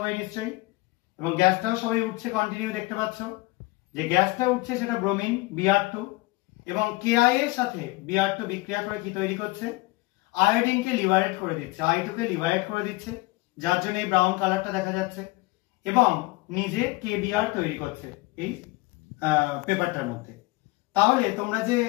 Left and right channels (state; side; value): quieter; right; 22.2 dB